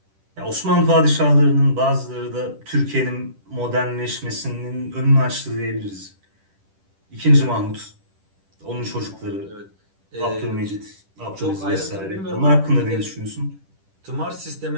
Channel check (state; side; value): late; left; 10 ms